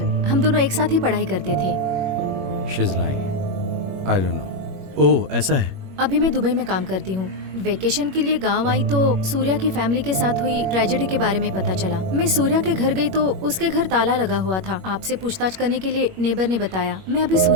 हम दोनों एक साथ ही पढ़ाई करते थे। She's lying. I don't know. ओह, ऐसा है। अभी मैं दुबई में काम करती हूँ। वेकेशन के लिए गांव आई तो सूर्या की फैमिली के साथ हुई ट्रेजेडी के बारे में पता चला। मैं सूर्या के घर गई तो उसके घर ताला लगा हुआ था। आपसे पूछताछ करने के लिए नेबर ने बताया। मैं अभी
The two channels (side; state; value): left; late; 21 ms